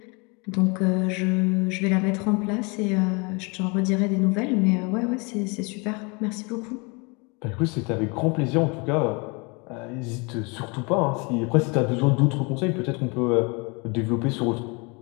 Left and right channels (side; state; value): right; quieter; 30.1 dB